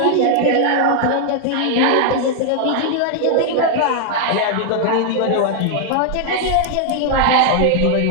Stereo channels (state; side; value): different; both; correlation 0.00